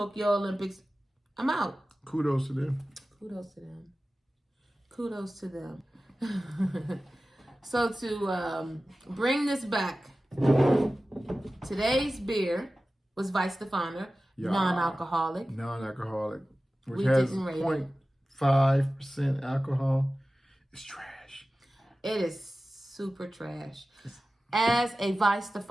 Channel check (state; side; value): normal; both; correlation 0.96